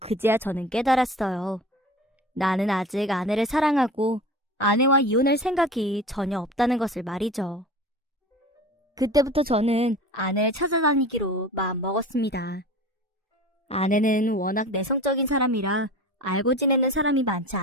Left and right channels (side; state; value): both; normal; correlation 0.36